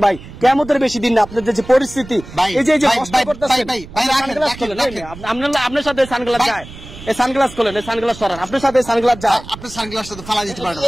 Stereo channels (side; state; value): right; noise; rumble, 16 dB below the sound